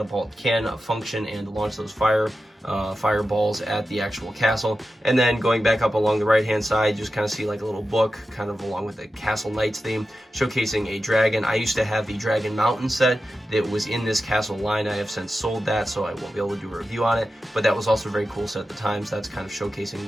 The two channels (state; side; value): normal; both; correlation 0.91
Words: can function and launch those fireballs at the actual castle. And then going back up along the right hand side, you just kind of see like a little book kind of along with the Castle Knights theme, showcasing a dragon. I used to have the Dragon Mountain set that was in this castle line. I have since sold that, so I won't be able to do a review on it, but that was also a very cool set at the time, so that's kind of showcasing